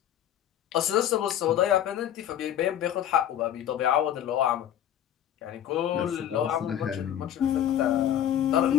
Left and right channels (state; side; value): quieter; right; 10.7 dB